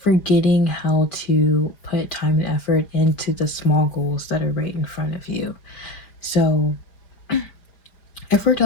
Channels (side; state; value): right; late; 4.9 ms